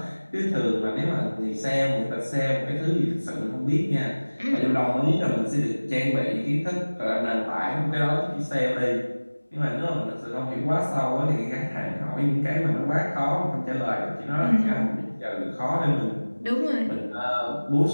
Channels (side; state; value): both; inverted; correlation -1.00